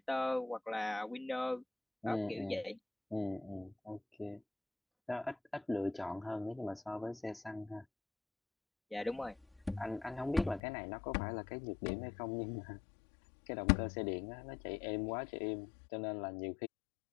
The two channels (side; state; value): right; drops out; at 10.6 s